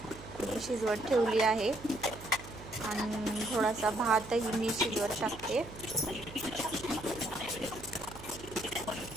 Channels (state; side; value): noise; right; hum, 15 dB below the sound